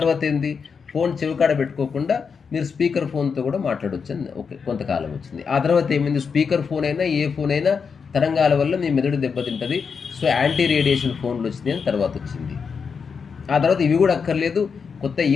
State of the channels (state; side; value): quieter; right; 5.9 dB